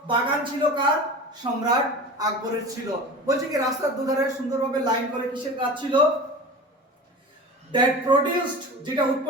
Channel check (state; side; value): normal; both; correlation 0.34